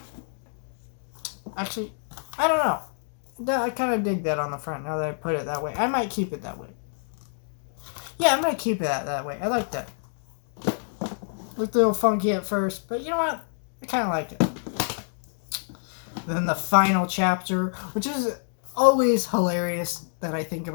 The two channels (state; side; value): silent; right; digital silence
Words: Actually, I don't know. I kind of dig that on the front now that I put it that way. I might keep it that way. Yeah, I'm going to keep it that way. I like that. Looked a little funky at first, but you know what? I kind of like it. Then the final chapter, which is always hilarious that I think